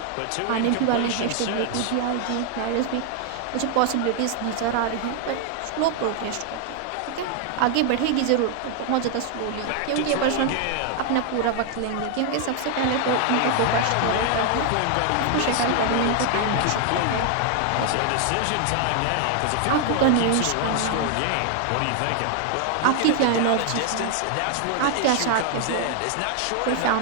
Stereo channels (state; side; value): different; both; correlation 0.00